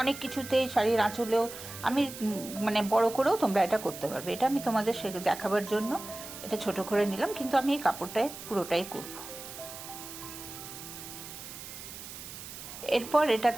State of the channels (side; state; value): right; noise; hiss, 12 dB below the sound